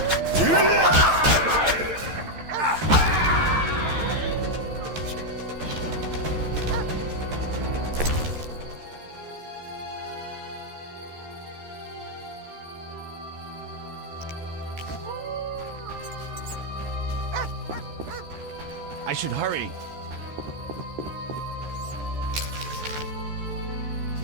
I should hurry.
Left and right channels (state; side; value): late; left; 13 ms